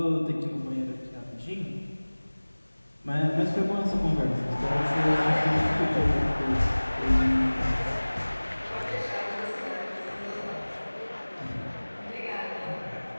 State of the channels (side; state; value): both; inverted; correlation -1.00